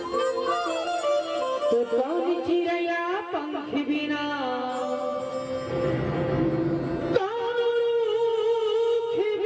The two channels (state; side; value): identical; both; correlation 1.00